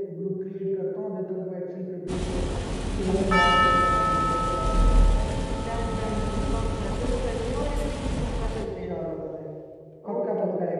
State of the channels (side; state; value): both; identical; correlation 1.00